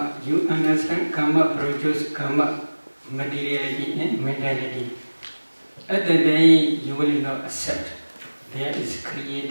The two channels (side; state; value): both; inverted; correlation -1.00